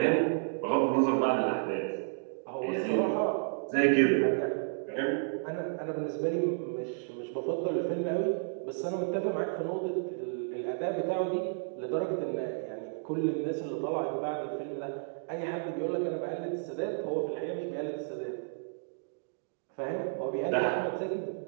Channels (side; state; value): left; silent; digital silence